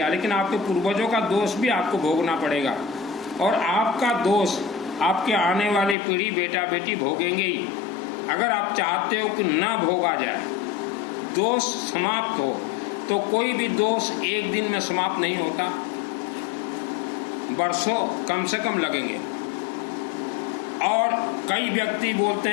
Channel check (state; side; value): drops out; right; at 6.0 s